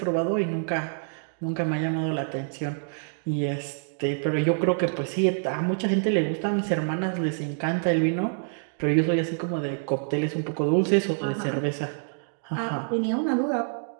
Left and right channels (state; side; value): silent; left; digital silence